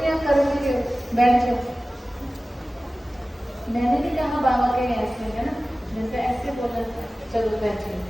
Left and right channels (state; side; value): normal; both; correlation 0.97